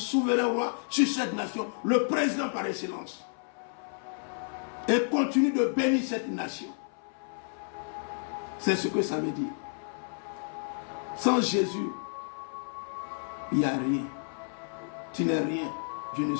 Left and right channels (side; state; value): right; silent; 57 dB below the other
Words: roi sur cette nation, le président par excellence. Et continue de bénir cette nation. C'est ce que ça veut dire. Sans Jésus, il n'y a rien. Tu n'es rien, je ne